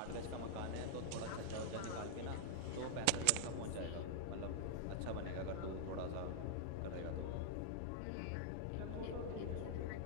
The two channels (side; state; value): both; different; correlation -0.01